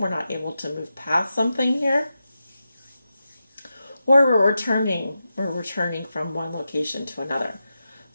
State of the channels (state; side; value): inverted; both; correlation -0.90